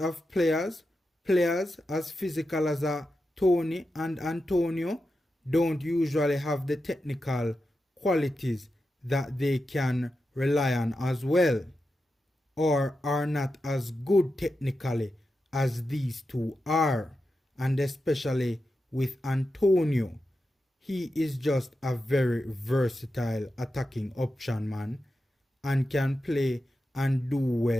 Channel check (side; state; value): both; normal; correlation 0.89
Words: players as physical as a Toney and Antonio, don't usually have the technical qualities that they can rely on as well, or are not as good technically as these two are. And especially with Antonio, he is just a very versatile attacking option, man, and can play and do